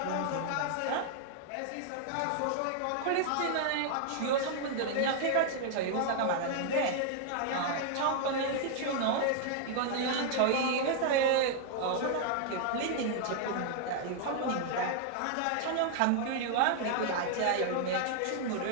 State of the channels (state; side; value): different; both; correlation 0.00